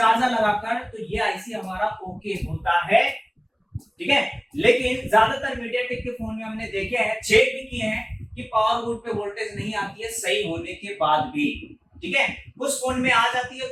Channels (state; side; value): identical; both; correlation 1.00